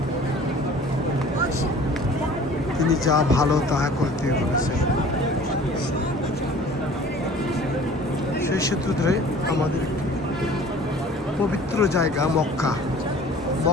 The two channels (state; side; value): normal; both; correlation 0.47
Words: তিনি যা ভালো তাহা করতে বলেছেন। সেই সূত্র ধরে আমাদের পবিত্র জায়গা